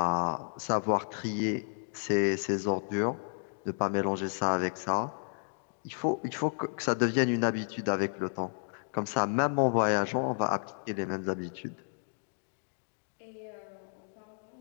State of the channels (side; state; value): right; silent; digital silence